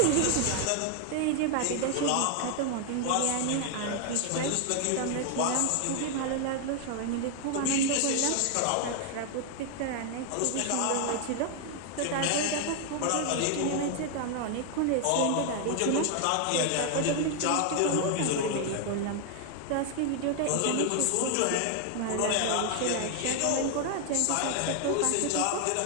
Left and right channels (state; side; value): different; both; correlation 0.00